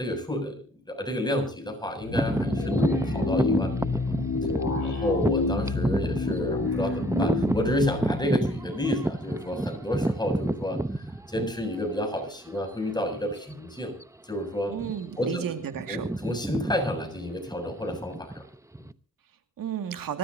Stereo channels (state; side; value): normal; both; correlation 0.58